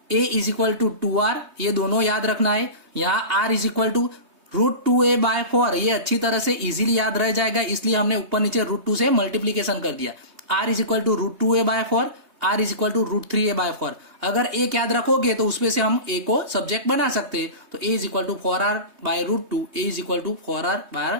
a is equal to 2r, ये दोनों याद रखना है। यहाँ r is equal to root 2a by 4, ये अच्छी तरह से इजीली याद रह जाएगा, इसलिए हमने ऊपर नीचे रूट 2 से मल्टीप्लीकेशन कर दिया। r is equal to root 2a by 4, r is equal to root 3a by 4। अगर एक याद रखोगे तो उसमें से हम a को सब्जेक्ट बना सकते हैं। तो a is equal to 4r by root 2, a is equal to 4r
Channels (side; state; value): left; late; 3.2 ms